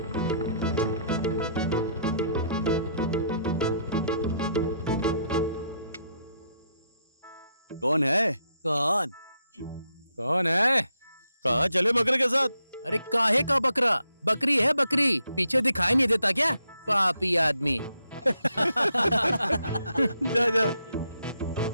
कौन है? कौन? कौन है? कहाँ चले बकरे के साथ? अरे काहे का बकरा? बकरी है बकरी, पीछे दिखाई नहीं देता क्या? पापी आदमी। जा जा।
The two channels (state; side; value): inverted; both; correlation -0.75